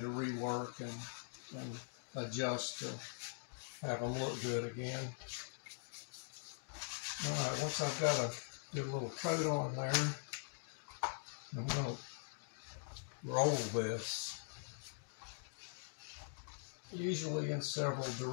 rework and adjust to have them look good again. All right, once I've got a good little coat on there, I'm going to roll this, usually in several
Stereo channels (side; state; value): right; silent; digital silence